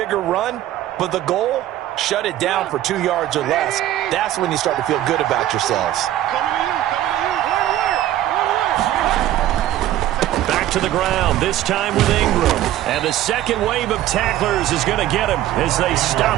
run, but the goal, shut it down for 2 yards or less. That's when you start to feel good about yourselves. Back to the ground, this time with Ingram. And the second wave of tacklers is going to get him as they stop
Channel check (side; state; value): left; quieter; 13.3 dB